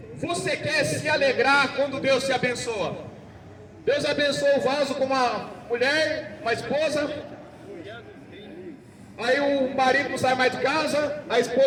você quer se alegrar quando Deus te abençoa? Deus abençoa o vaso com uma mulher, uma esposa. Aí o marido não sai mais de casa, a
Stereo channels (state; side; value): identical; both; correlation 1.00